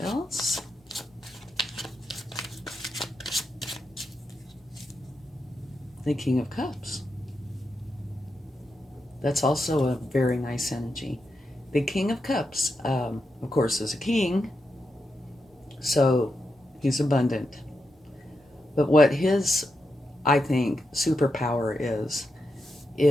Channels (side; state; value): both; normal; correlation 0.86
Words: else. The King of Cups. That's also a very nice energy. The King of Cups, of course, is a king, so he's abundant. But what his, I think, superpower